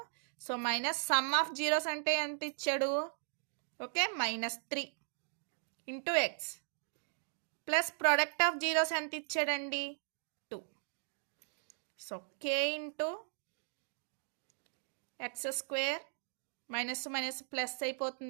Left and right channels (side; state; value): left; silent; digital silence